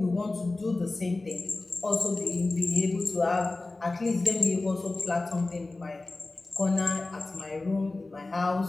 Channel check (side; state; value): right; quieter; 3.2 dB